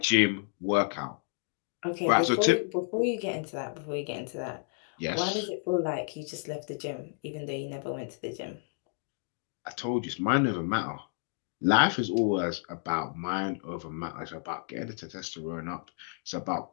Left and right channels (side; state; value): right; silent; 57 dB below the other